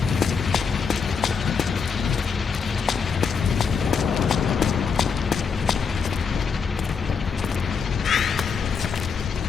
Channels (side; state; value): right; quieter; 5.8 dB